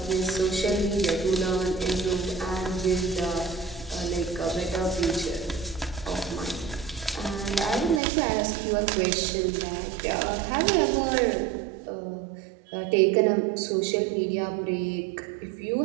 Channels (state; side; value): drops out; left; at 8.0 s